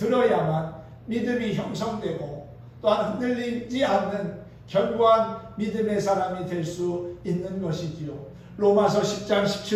믿음이 형성되고 또한 흔들리지 않는 견고한 믿음의 사람이 될 수 있는 것이지요. 로마서 10장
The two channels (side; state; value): both; identical; correlation 1.00